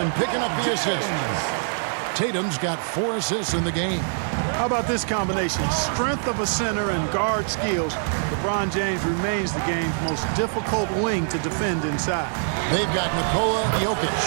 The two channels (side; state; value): left; silent; digital silence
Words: picking up the assist. Tatum's got 4 assists in the game. How about this combination? Strength of a center and guard skills. LeBron James remains the game's most difficult wing to defend inside. They've got Nikola Jokic.